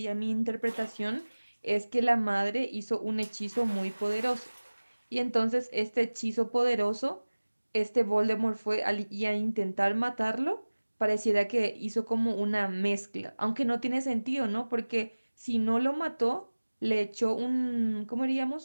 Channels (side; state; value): both; inverted; correlation -1.00